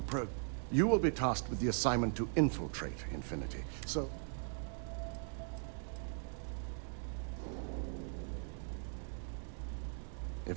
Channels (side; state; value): left; silent; 51 dB below the other